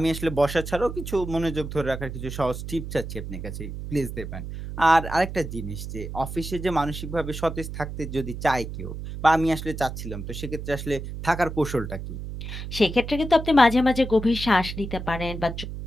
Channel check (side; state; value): right; noise; hum, 8 dB below the sound